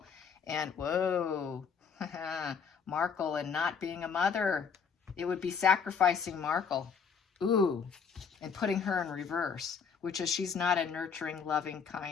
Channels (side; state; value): right; quieter; 6.3 dB